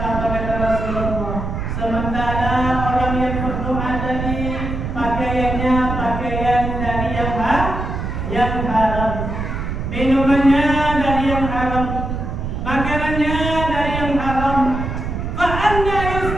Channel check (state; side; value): noise; right; rumble, 4 dB below the sound